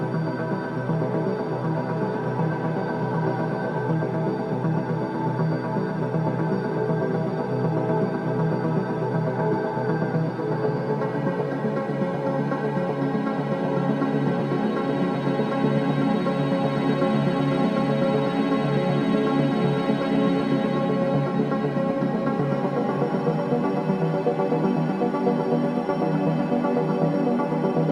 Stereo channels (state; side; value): identical; both; correlation 1.00